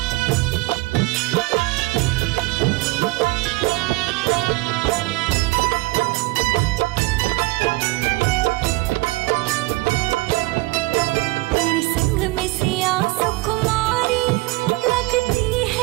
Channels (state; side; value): quieter; left; 21.8 dB